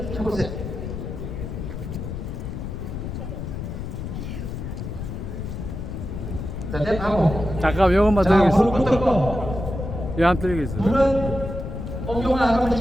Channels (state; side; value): noise; left; rumble, 6 dB below the sound